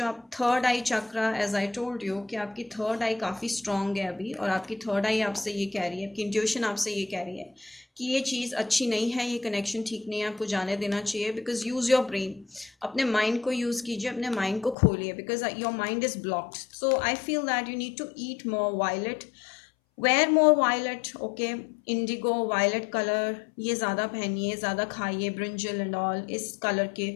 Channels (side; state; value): right; drops out; at 14.8 s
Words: आप third eye chakra, as I told you कि आपकी थर्ड आई काफ़ी स्ट्रॉन्ग है अभी, और आपकी थर्ड आई आपसे ये कह रही है, आपकी इंट्यूशन आपसे ये कह रही है कि ये चीज़ अच्छी नहीं है, ये कनेक्शन ठीक नहीं है, आपको जाने देना चाहिए। बिकॉज यूज़ योर ब्रेन, अपने माइंड को यूज़ कीजिए, अपने माइंड को खोलिए, because your mind is blocked. So I feel that you need to eat more violet, wear more violet, okay. Indigo, violet colour ये ज़्यादा पहनिए, ज़्यादा खाइए, ब्रिंजल एंड ऑल इस कलर के,